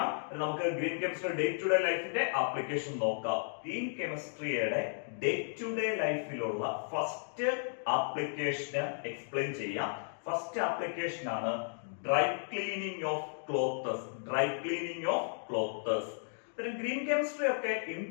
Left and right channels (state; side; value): silent; right; digital silence